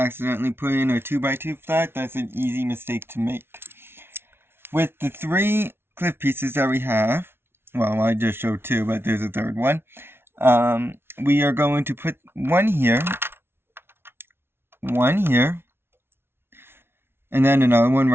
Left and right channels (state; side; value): late; left; 0.12 ms